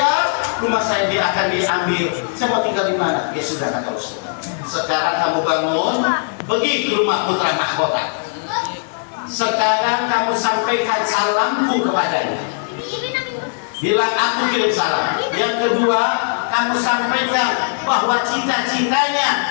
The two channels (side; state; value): right; silent; digital silence